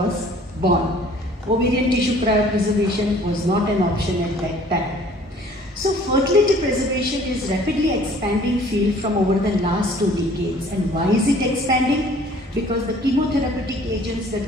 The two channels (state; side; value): normal; both; correlation 0.54